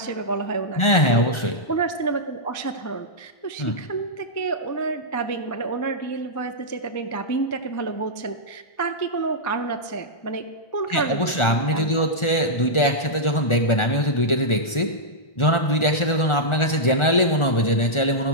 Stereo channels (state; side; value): late; right; 1.4 ms